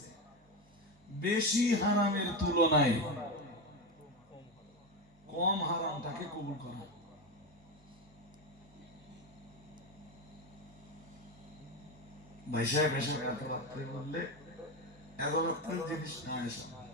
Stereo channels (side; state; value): both; normal; correlation 0.15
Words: বেশি হারামের তুলনায় কম হারামটাকে কবুল করা। ভাই সাহেব এসে এত রাত্রে বললে এত রাত্রের জিনিস না এসে